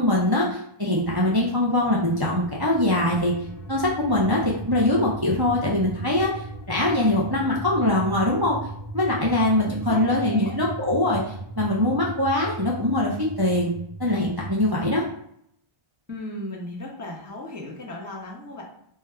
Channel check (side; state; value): left; late; 1.1 ms